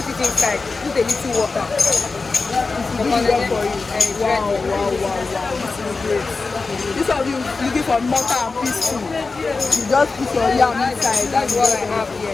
it inside, put a little water. This is well for you. Wow. This is great. This one you looking for mortar and pestle. You just put your yam inside. That's what I have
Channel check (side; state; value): right; quieter; 4.0 dB